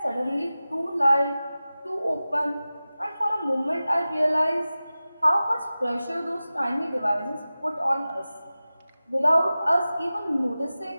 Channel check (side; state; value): both; inverted; correlation -0.96